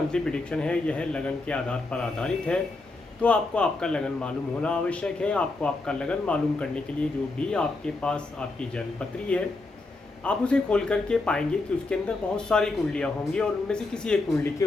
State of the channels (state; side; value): quieter; right; 3.2 dB